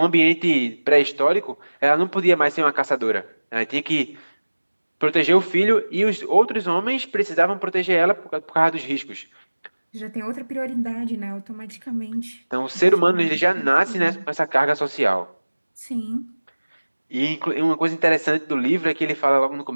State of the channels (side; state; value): both; inverted; correlation -1.00